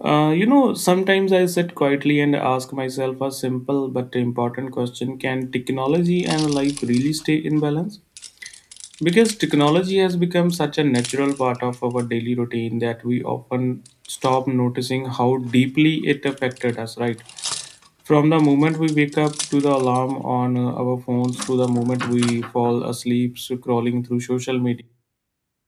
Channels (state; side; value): identical; both; correlation 1.00